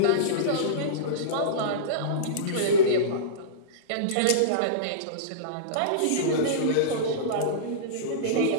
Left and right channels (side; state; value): both; different; correlation -0.05